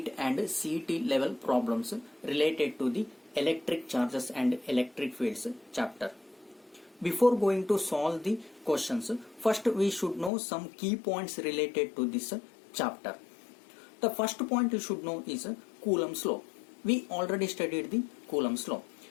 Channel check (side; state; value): right; drops out; at 10.3 s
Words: and CET level problems related to the electric charges and electric fields chapter. Before going to solve the questions, first we should know some key points related to this chapter. The first point you should know is Coulomb's law. We already studied the Coulomb's law.